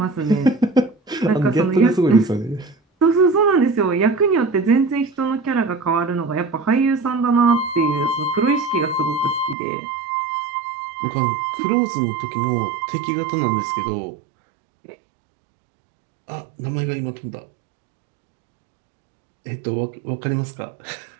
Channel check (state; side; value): drops out; left; at 9.6 s